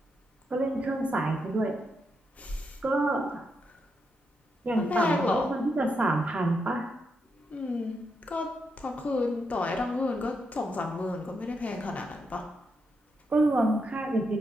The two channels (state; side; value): normal; both; correlation 0.82